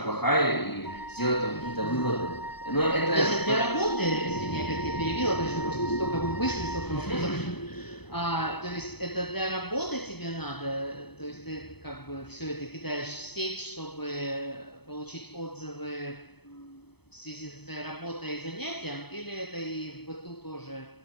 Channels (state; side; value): late; right; 0.98 ms